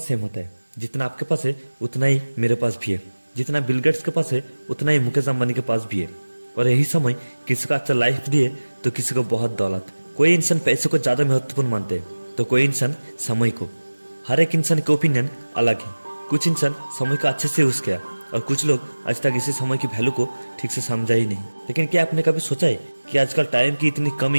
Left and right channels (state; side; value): inverted; both; correlation -1.00